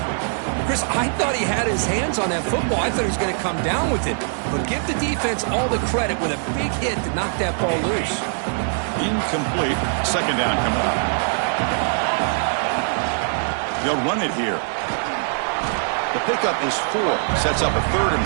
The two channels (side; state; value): left; silent; digital silence